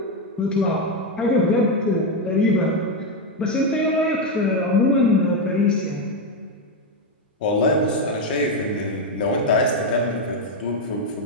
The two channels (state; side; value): normal; both; correlation 0.06